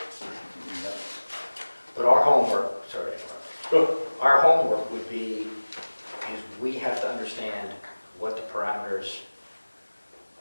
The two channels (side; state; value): both; inverted; correlation -1.00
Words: But our homework, sorry, Go. our homework would be, is we have to understand what the parameters